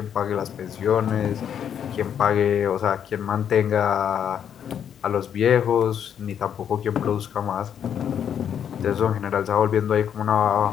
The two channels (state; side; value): quieter; right; 8.7 dB